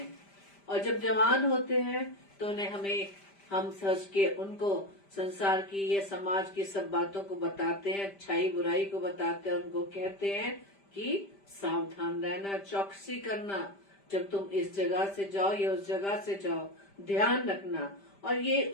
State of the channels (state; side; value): late; right; 5.1 ms